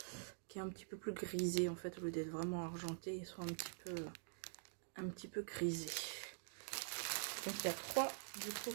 plus grisé en fait, au lieu d'être vraiment argenté, ils sont un petit peu grisés. Donc il y a 3 du coup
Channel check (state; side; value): silent; left; digital silence